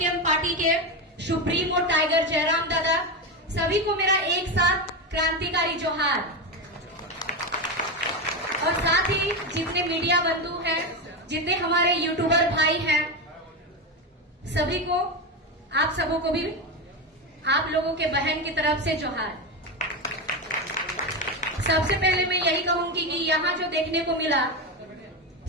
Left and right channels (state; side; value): normal; both; correlation 0.14